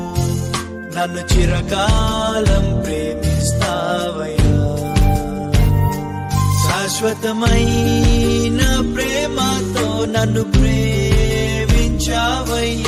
నన్ను చిరకాలం ప్రేమిస్తావయ్యా. శాశ్వతమైన ప్రేమతో నన్ను ప్రేమించావయ్యా.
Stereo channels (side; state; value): both; identical; correlation 1.00